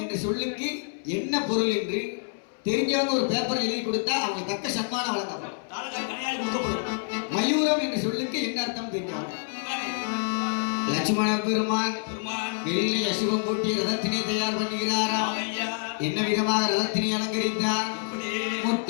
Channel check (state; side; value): silent; right; 60 dB below the other